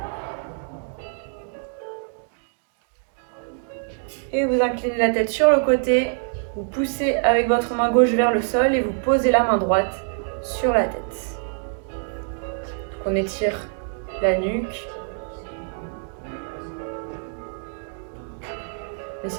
Et vous inclinez la tête sur le côté, vous poussez avec votre main gauche vers le sol et vous posez la main droite sur la tête. Donc on étire la nuque.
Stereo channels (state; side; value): silent; left; digital silence